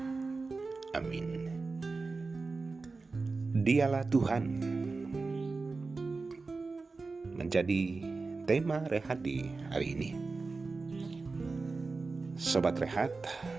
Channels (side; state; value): left; quieter; 3.9 dB